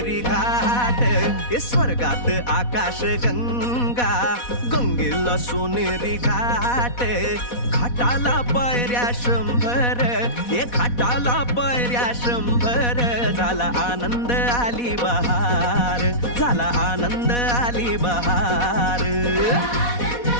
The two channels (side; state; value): right; late; 4.1 ms